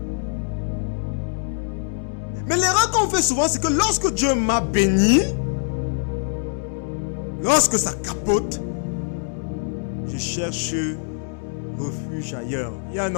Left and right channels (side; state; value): right; silent; 62 dB below the other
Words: Mais l'erreur qu'on fait souvent, c'est que lorsque Dieu m'a béni, lorsque ça capote, je cherche refuge ailleurs. Il y a un